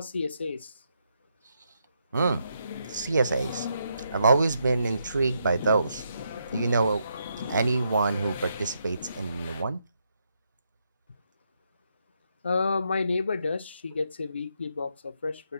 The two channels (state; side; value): inverted; both; correlation -0.79